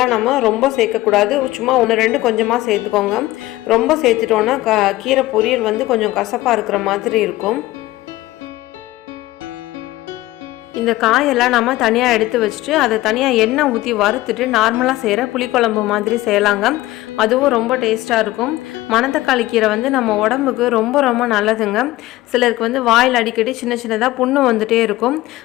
நம்ம ரொம்ப சேர்க்கக்கூடாது. சும்மா 1-2 கொஞ்சமாக சேர்த்துக்கோங்க. ரொம்ப சேர்த்துட்டோன்னா கீரை பொரியல் வந்து கொஞ்சம் கசப்பாக இருக்கிற மாதிரி இருக்கும். இந்த காயெல்லாம் நம்ம தனியாக எடுத்து வச்சுட்டு அதை தனியாக எண்ணெய் ஊற்றி வறுத்துட்டு நார்மலாக செய்கிற புளிக்குழம்பு மாதிரி செய்யலாங்க. அதுவும் ரொம்ப டேஸ்ட்டாக இருக்கும். மணத்தக்காளி கீரை வந்து நம்ம உடம்புக்கு ரொம்ப ரொம்ப நல்லதுங்க. சிலருக்கு வந்து வாயில் அடிக்கடி சின்ன சின்னதாக புண்ணு வந்துகிட்டே இருக்கும்.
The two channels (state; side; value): quieter; right; 17.4 dB